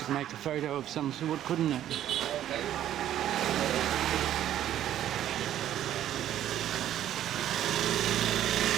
make a photo of some sort, couldn't it?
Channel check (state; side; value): quieter; left; 11.6 dB